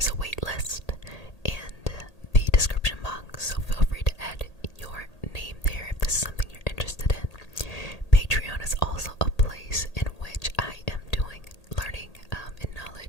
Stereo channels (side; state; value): right; late; 1.8 ms